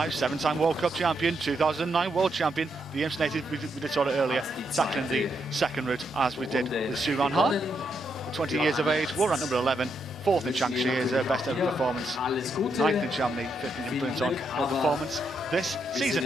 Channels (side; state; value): both; normal; correlation 0.79